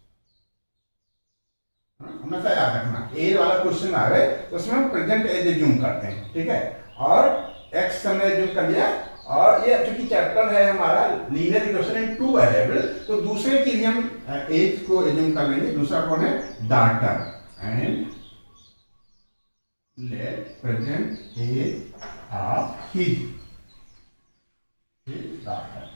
हमेशा याद रखना, एज वाला क्वेश्चन आ गए तो उसमें हम प्रेजेंट एज एज्यूम करते हैं। ठीक है, और x हमने एज्यूम कर लिया। और ये चूंकि चैप्टर है हमारा linear equation in two variable, तो दूसरे की भी हम एज को एज्यूम कर लेंगे। दूसरा कौन है? Daughter. And let present age of his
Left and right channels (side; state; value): both; inverted; correlation -1.00